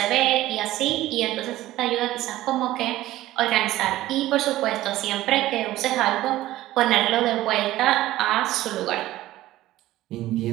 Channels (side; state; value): left; quieter; 15.6 dB